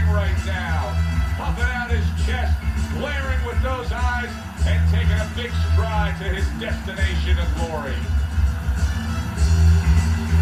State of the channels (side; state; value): both; identical; correlation 1.00